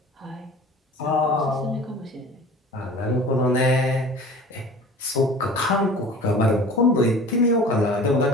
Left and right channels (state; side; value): normal; both; correlation 0.42